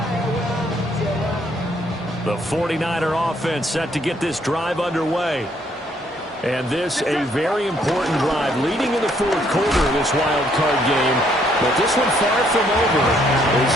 The 49er offense set to get this drive underway. And this a very important drive leading in the fourth quarter of this wild card game. But this one far from over as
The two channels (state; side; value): normal; both; correlation 0.68